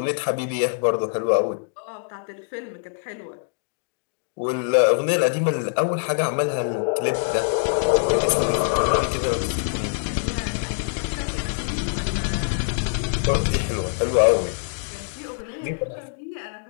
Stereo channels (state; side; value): silent; right; digital silence